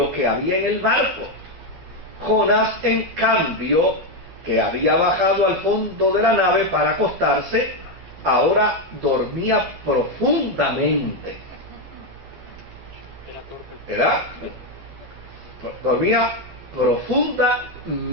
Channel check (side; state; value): left; late; 12 ms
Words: que había en el barco. Jonás, en cambio, que había bajado al fondo de la nave para acostarse, ahora dormía profundamente. ¿Verdad? Dormía